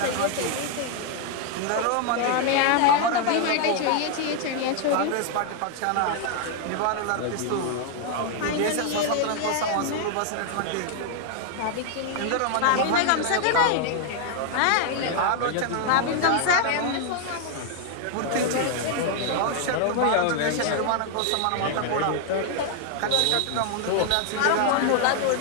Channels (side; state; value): both; different; correlation 0.00